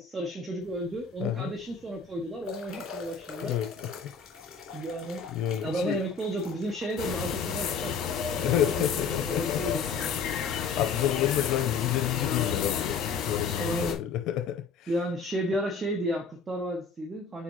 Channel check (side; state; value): right; quieter; 5.3 dB